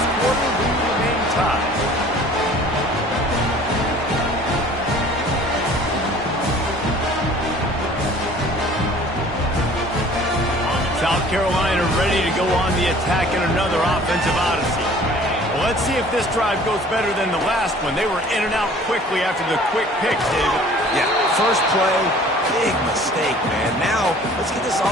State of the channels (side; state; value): both; normal; correlation 0.50